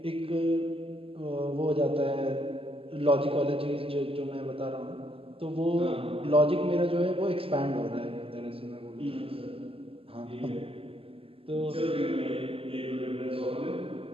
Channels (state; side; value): late; left; 0.27 ms